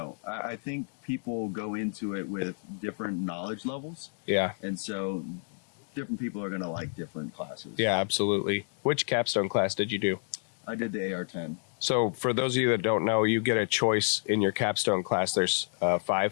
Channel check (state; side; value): silent; right; digital silence